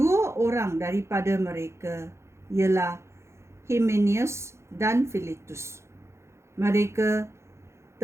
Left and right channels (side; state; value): left; late; 0.13 ms